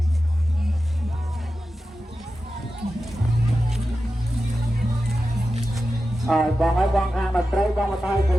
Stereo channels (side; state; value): both; normal; correlation 0.92